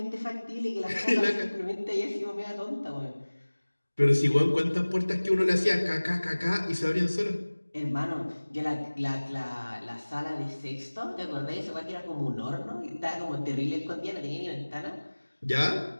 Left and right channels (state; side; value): inverted; both; correlation -1.00